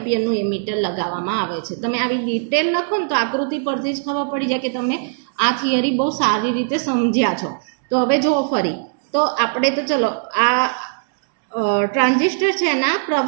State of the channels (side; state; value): left; silent; 66 dB below the other